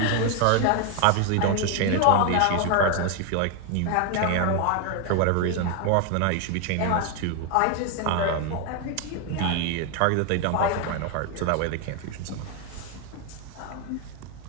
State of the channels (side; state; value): both; different; correlation 0.01